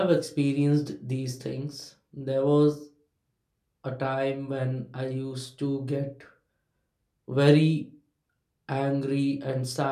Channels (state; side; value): identical; both; correlation 1.00